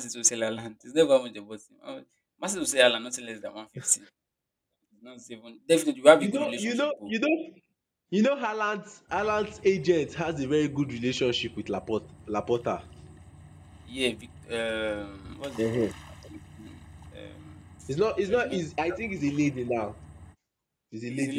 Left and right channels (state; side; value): identical; both; correlation 1.00